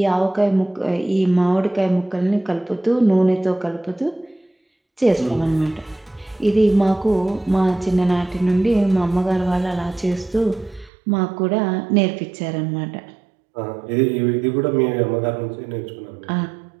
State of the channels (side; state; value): left; drops out; at 10.9 s